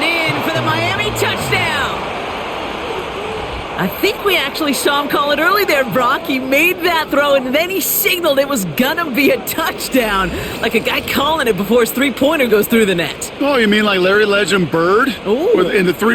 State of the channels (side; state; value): both; identical; correlation 1.00